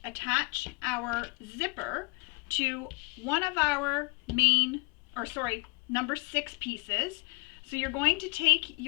attach our zipper to one of our number 6 pieces. So you're going to take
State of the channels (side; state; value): right; quieter; 26.5 dB